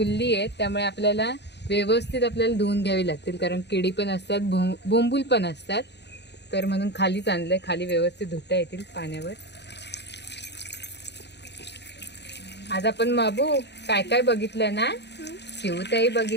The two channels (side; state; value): right; late; 0.50 ms